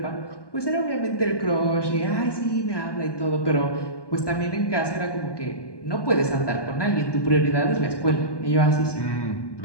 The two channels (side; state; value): right; late; 1.2 ms